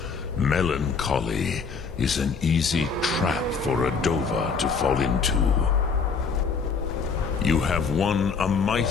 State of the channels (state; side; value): quieter; right; 5.2 dB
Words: Melancholy is an easy trap for a Dova to fall into. You have won a